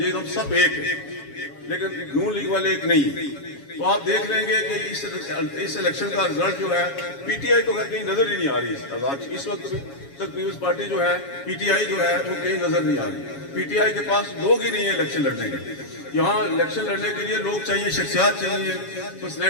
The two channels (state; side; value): late; right; 7.2 ms